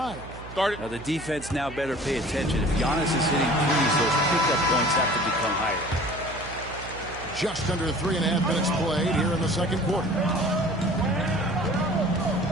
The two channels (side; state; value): right; noise; hum, 15 dB below the sound